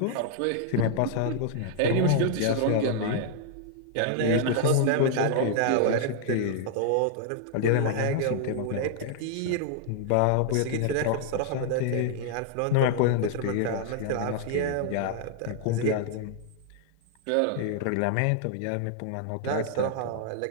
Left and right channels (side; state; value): both; different; correlation -0.01